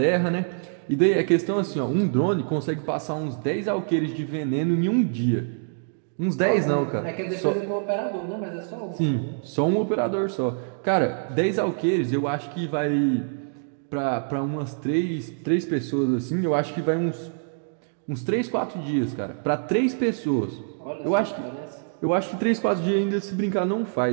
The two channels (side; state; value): left; silent; digital silence